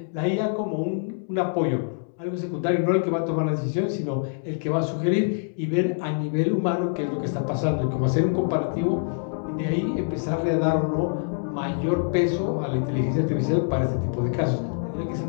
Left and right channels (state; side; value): silent; right; digital silence